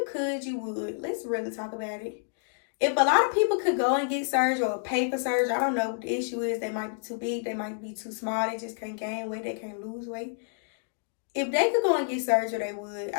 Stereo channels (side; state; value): right; silent; digital silence